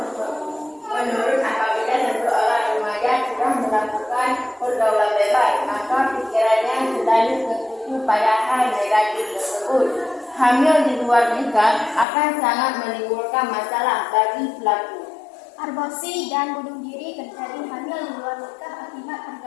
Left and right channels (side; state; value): right; drops out; at 12.1 s